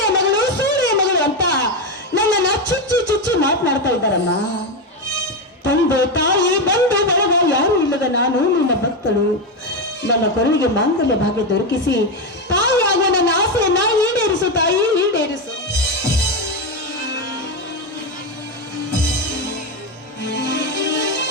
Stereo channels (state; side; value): normal; both; correlation 0.11